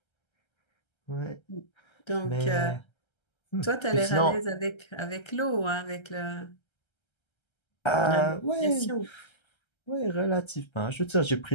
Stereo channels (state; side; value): late; right; 1.3 ms